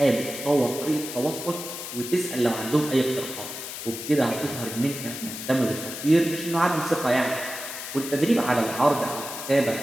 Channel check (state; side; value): noise; left; hiss, 8 dB below the sound